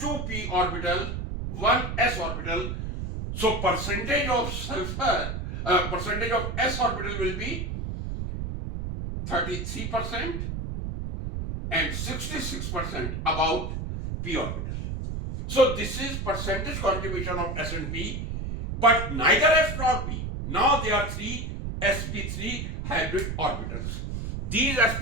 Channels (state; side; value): noise; right; rumble, 4 dB below the sound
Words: orbital, 1 s orbital. So percentage of sulfur, percentage of s orbital will be 33% and 66% about p orbital. So this is percentage contribution of s and p, but neither s nor p. Now there are three sp3 hybrid orbitals. These